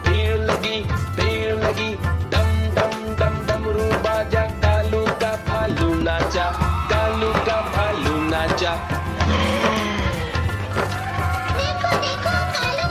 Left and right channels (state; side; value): identical; both; correlation 1.00